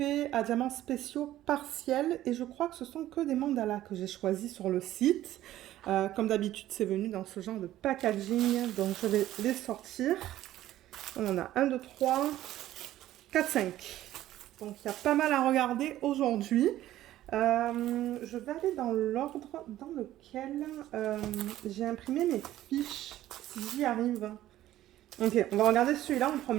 à diamants spéciaux partiels et je crois que ce sont que des mandalas que j'ai choisis sur le site. Comme d'habitude, c'est venu dans ce genre de packaging, donc je vais les sortir. On en a 1, 2, 3, 4, 5. Donc il y a pas mal à regarder aujourd'hui. Je vais aller dans l'ordre dans lequel j'ai imprimé mes fiches, si j'y arrive. Ok, on va regarder celui-là en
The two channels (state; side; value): quieter; left; 13.9 dB